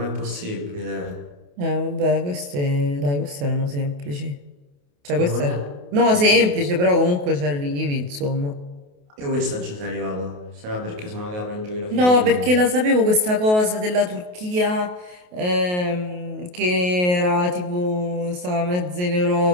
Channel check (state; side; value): late; left; 28 ms